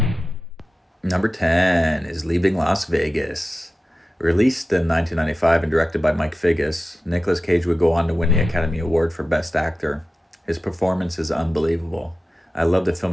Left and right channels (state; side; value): normal; both; correlation 0.94